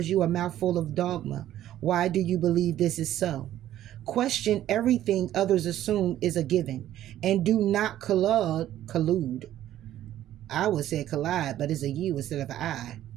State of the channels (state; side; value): quieter; left; 12.6 dB